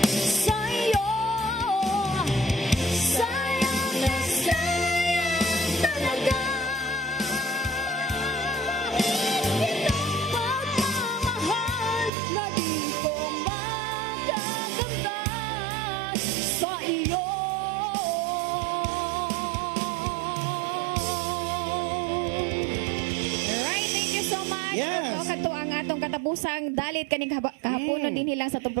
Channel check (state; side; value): drops out; left; at 12.1 s